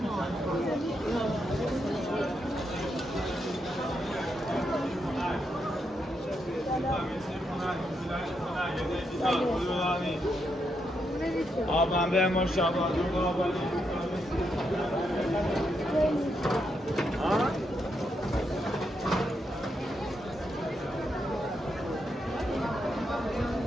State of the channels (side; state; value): both; normal; correlation 0.81